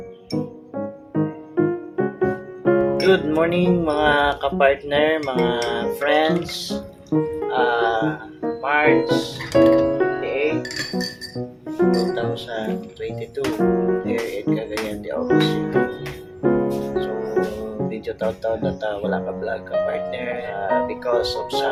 Good morning mga kapartner, mga friends. March 28, 2022, here in Cagayan de Oro City. So, video taon-taon na wala ka vlog ka partner because of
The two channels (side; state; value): both; identical; correlation 1.00